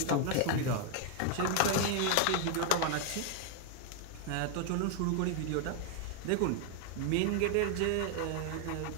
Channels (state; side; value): different; both; correlation 0.01